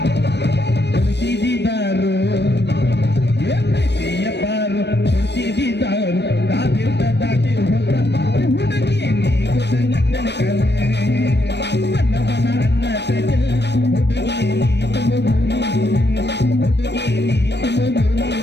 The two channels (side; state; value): right; late; 0.50 ms